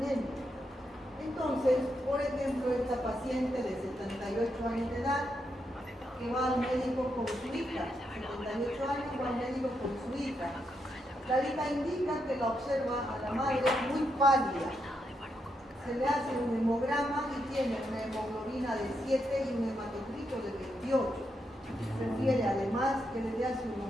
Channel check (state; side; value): normal; both; correlation 0.82